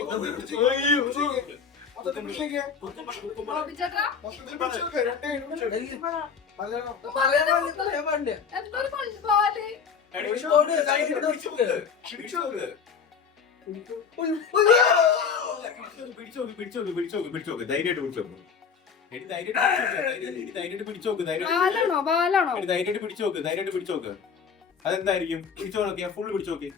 ധൈര്യമായിട്ട് പിടിച്ചോക്ക്. ബാലാണോ ബാലാണോ? ധൈര്യമായിട്ട് പിടിച്ചോക്ക്. അതെന്തായിരിക്കും? പിടിച്ചോ നോക്കിയാ ഫുള്ള് പിടിച്ചോക്ക്.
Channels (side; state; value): right; quieter; 6.2 dB